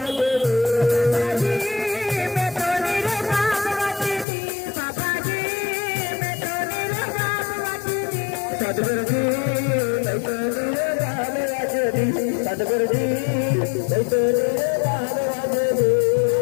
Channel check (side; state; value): right; drops out; at 4.2 s